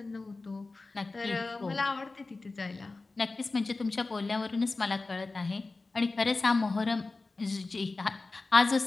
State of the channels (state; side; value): quieter; right; 3.6 dB